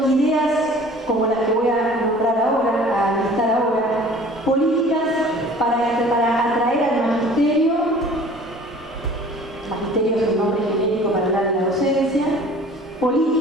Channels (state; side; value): normal; both; correlation 0.47